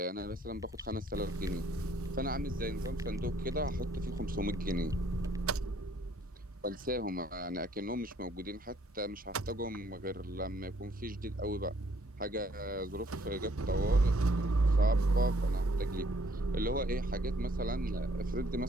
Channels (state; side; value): normal; both; correlation 0.64